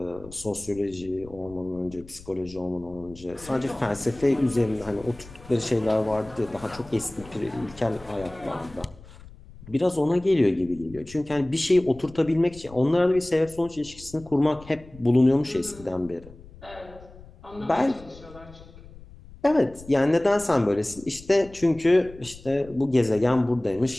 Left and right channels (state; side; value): noise; left; rumble, 20 dB below the sound